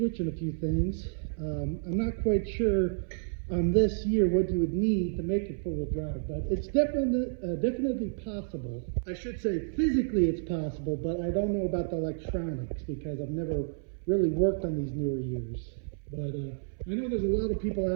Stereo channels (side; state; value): left; silent; 58 dB below the other